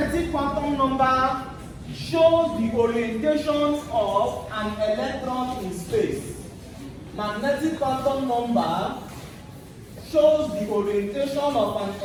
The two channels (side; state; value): both; identical; correlation 1.00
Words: shows the orientation of an electron in space. Magnetic quantum number shows the orientation of an